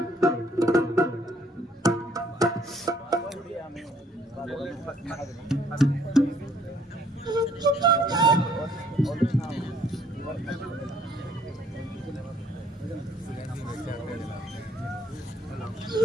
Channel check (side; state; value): both; normal; correlation 0.63